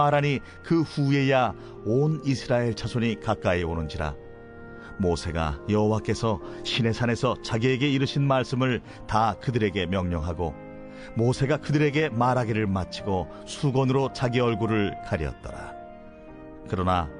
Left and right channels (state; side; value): identical; both; correlation 1.00